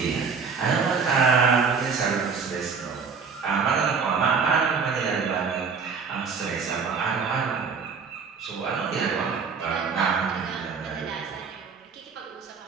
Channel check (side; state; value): left; quieter; 5.5 dB